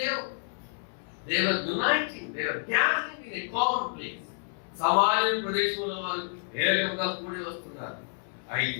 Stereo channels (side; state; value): right; silent; 58 dB below the other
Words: లేవు. They were uniting, they were gathering in a common place. సమాజ ప్రదేశంలో వాళ్ళు ఏకంగా కూడి వస్తున్నారు.